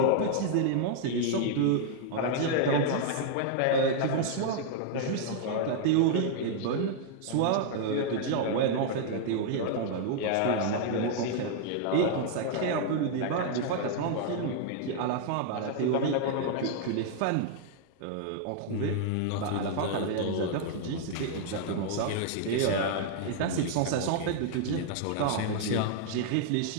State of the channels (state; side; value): different; both; correlation -0.01